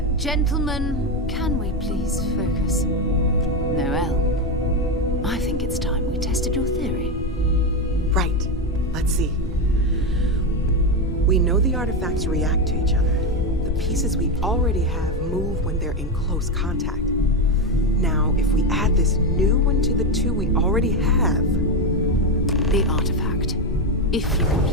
gentlemen, can we please focus? Noel, I think it's time we tested your theory. Right. Let's see. We know the artifacts react to each other. The pieces we already have move when they're in close contact. Now, if we add this new one to the two we already have... The artifact. If you can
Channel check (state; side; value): normal; both; correlation 0.10